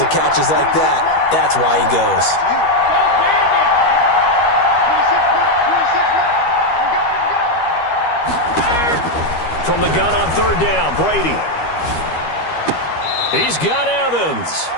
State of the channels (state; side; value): late; right; 13 ms